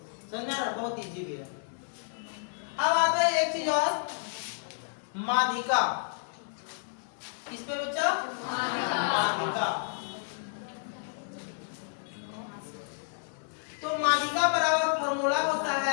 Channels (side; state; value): right; silent; 57 dB below the other